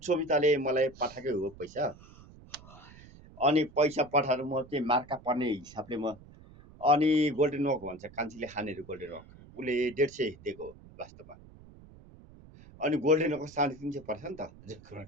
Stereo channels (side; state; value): right; noise; rumble, 21 dB below the sound